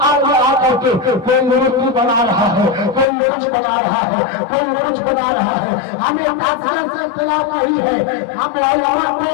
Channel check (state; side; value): drops out; right; at 3.1 s